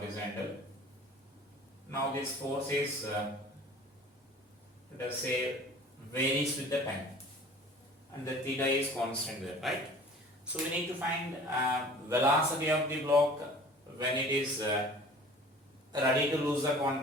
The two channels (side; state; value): both; normal; correlation 0.45